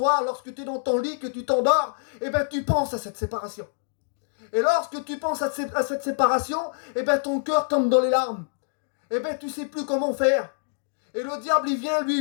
lorsque tu es dans ton lit, que tu t'endors, eh bien tu penses à cette séparation. Et lorsque tu penses à cette séparation, eh bien ton cœur tombe dans les larmes. Eh bien tu ne sais plus comment faire. Et le diable, il vient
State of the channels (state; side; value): silent; right; digital silence